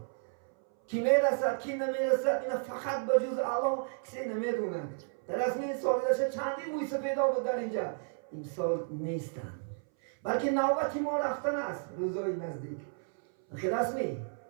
کی میرسد کی نمیرسد این فقط به جز الله کسی نمیدونه. در اصل این سال داشته چندین مویسه پیدا بود در اینجا، این سال نیستن، بلکه نوبتی ما رفتن است روزای نزدیک. خلاص می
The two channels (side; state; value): left; silent; 56 dB below the other